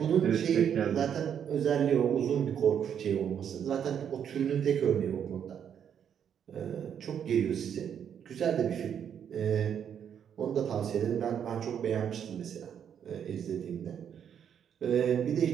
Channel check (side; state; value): left; quieter; 8.5 dB